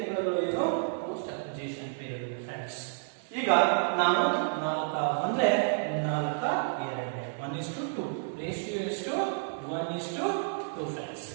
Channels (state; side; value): silent; left; digital silence